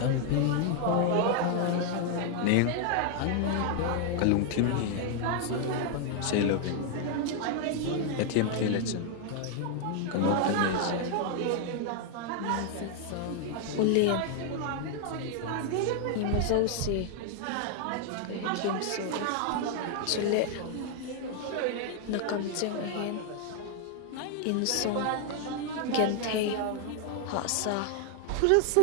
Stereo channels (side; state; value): both; different; correlation 0.00